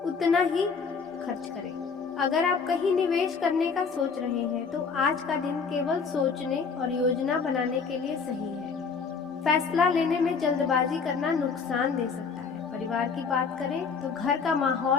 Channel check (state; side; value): quieter; right; 5.4 dB